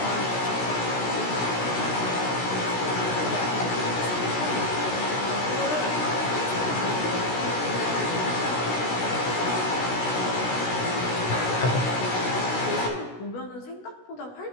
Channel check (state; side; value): late; right; 16 ms